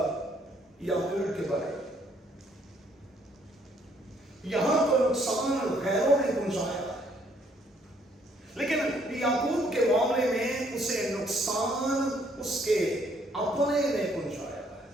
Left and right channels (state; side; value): normal; both; correlation 0.66